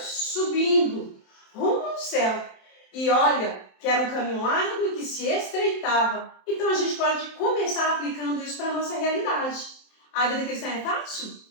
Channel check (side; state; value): right; late; 27 ms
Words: subindo rumo ao céu. E olha, que era um caminho largo e que se estreitava. Então a gente pode começar aplicando isso para a nossa realidade. A vida cristã é fácil?